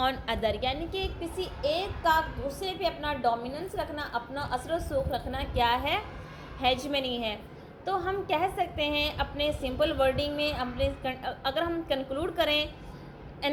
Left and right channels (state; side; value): identical; both; correlation 1.00